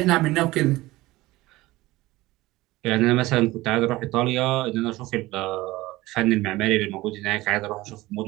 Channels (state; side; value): quieter; left; 18.8 dB